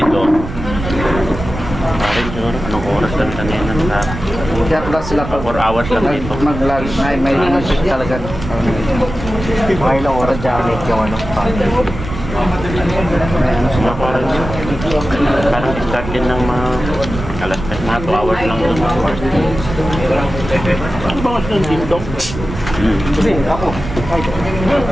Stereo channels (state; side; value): noise; right; rumble, 8 dB below the sound